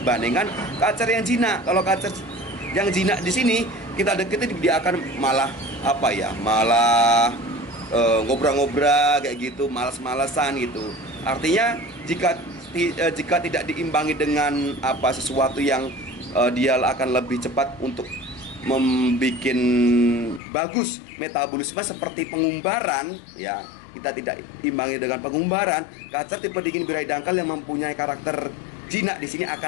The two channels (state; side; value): drops out; right; at 20.4 s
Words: kacer yang jinak. Kalau kacer yang jinak di sini kita deketin, dia akan malah ngobrol-ngobrol kayak gitu, malas-malasan gitu. Artinya jika tidak diimbangi dengan sesuatu yang dia akan lebih cepat untuk membuat bagus metabolisme seperti pengumbaran ya, kita tidak imbangi dengan pengumbaran, kacer tipe dingin birahi dangkal yang mempunyai karakter jinak di sini